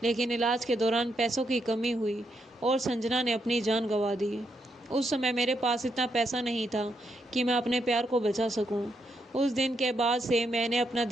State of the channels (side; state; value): both; normal; correlation 0.79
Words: लेकिन इलाज के दौरान पैसों की कमी हुई और संजना ने अपनी जान गंवा दी। उस समय मेरे पास इतना पैसा नहीं था कि मैं अपने प्यार को बचा सकूं। उस दिन के बाद से मैंने अपना